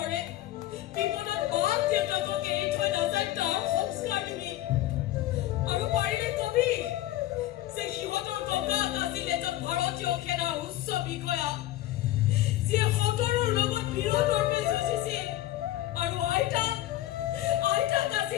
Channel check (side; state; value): right; quieter; 14.9 dB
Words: বিপদত মাক দেউতাকক এৰি থৈ নাযায় তাৰ সংস্কাৰ দিবি আৰু পাৰিলে কবি যে সিহঁতৰ ককাক আছিল এজন ভাৰতীয় সেনাৰ উচ্চ বিষয়া যিয়ে সতৰৰ লগত বিৰোধৰ্মে যুঁজিছিল আৰু আইতাক